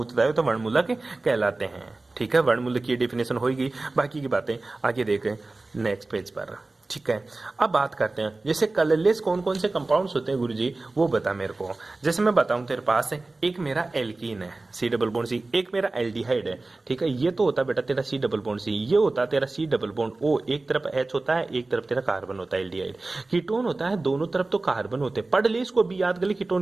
उत्तरदायी हो तो वर्णमूलक कहलाते हैं। ठीक है, वर्णमूलक की डेफिनेशन होगी। बाकी की बातें आगे देखें नेक्स्ट पेज पर। ठीक है, अब बात करते हैं जैसे कलरलेस कौन कौन से कंपाउंड्स होते हैं गुरुजी, वो बता मेरे को। जैसे मैं बताऊं तेरे पास है, एक मेरा एल्कीन है C डबल बॉन्ड C, एक मेरा एल्डिहाइड है। ठीक है, ये तो होता है बेटा तेरा C डबल बॉन्ड C, ये होता है तेरा C डबल बॉन्ड O, एक तरफ H होता है, एक तरफ तेरा कार्बन होता है एल्डिहाइड। कीटोन होता है, दोनों तरफ तो कार्बन होते हैं। पढ़ ले इसको, भी याद कर ले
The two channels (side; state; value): left; quieter; 3.2 dB